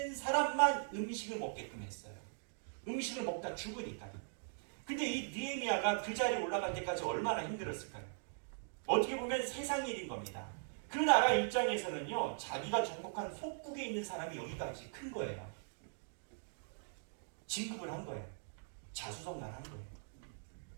사람만 음식을 먹게끔 했어요. 음식을 먹다 죽으니까. 근데 이 느헤미야가 그 자리에 올라갈 때까지 얼마나 힘들었을까요? 어떻게 보면 세상 일인 겁니다. 그 나라 입장에서는요, 자기가 정복한 속국에 있는 사람이 여기까지 큰 거예요. 진급을 한 거예요. 자수성가한 거예요.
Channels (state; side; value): silent; left; digital silence